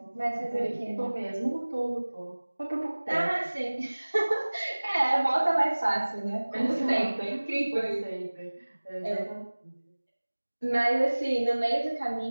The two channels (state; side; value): inverted; both; correlation -1.00